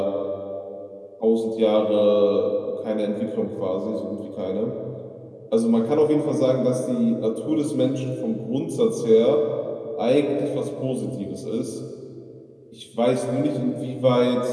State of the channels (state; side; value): identical; both; correlation 1.00